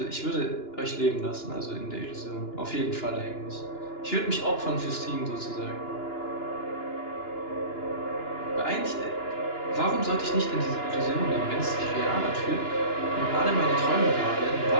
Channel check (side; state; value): right; late; 2.9 ms